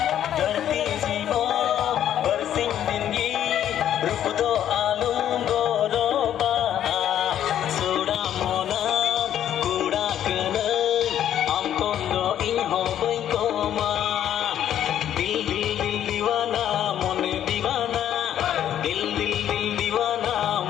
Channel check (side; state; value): right; quieter; 10.7 dB